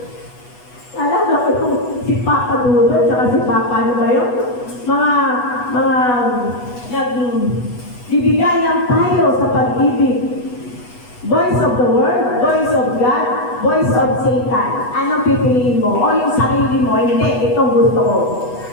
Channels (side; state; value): right; late; 8.1 ms